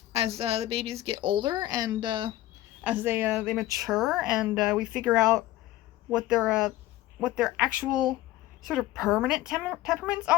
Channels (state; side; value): quieter; right; 15.6 dB